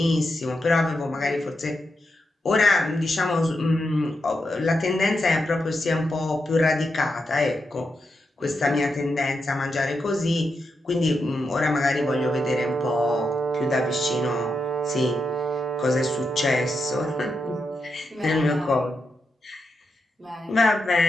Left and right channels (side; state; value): both; normal; correlation 0.85